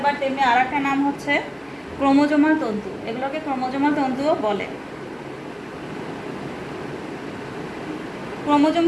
তেমনি আর একটা নাম হচ্ছে ক্রোমোজোমাল তন্তু। এগুলোকে ক্রোমোজোমাল তন্তুও বলে।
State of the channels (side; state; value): both; identical; correlation 1.00